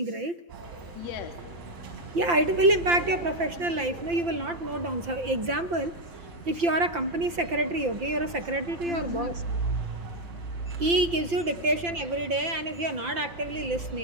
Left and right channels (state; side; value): late; left; 5.8 ms